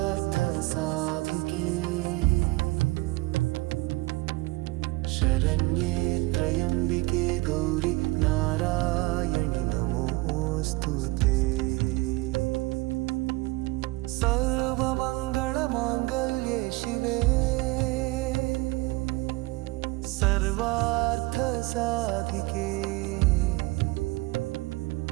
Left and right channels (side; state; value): left; quieter; 21.9 dB